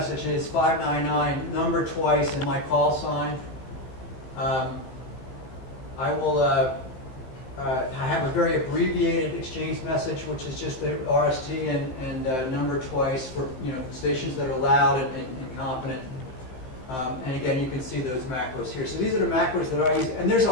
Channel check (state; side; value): late; right; 15 ms